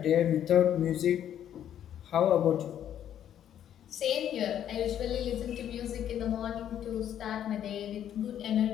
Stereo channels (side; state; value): right; quieter; 10.3 dB